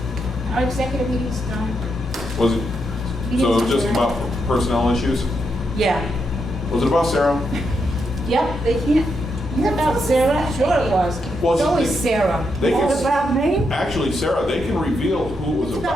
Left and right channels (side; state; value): both; normal; correlation 0.82